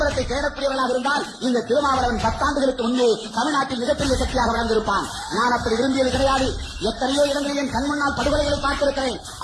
தேடக்கூடியவர்களாக இருந்தால் இந்த திருமாவளவன் 10 ஆண்டுகளுக்கு முன்பே தமிழ்நாட்டில் மிகப்பெரிய சக்தியாக வளர்ந்திருப்பான். நான் அப்படி விரும்பியது கிடையாது. எத்தனையோ இடங்களில் என் கண் முன்னால் படுகொலைகளை பார்த்திருக்கிறேன்.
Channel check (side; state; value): both; identical; correlation 1.00